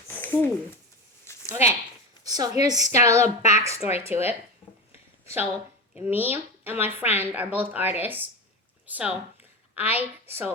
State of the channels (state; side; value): normal; both; correlation 0.22